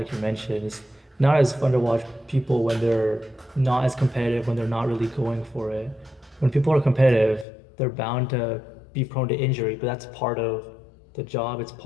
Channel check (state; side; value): drops out; right; at 7.5 s